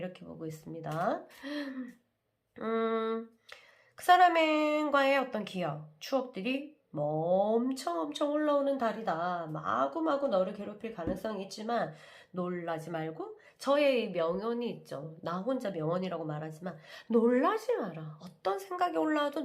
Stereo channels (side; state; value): both; identical; correlation 1.00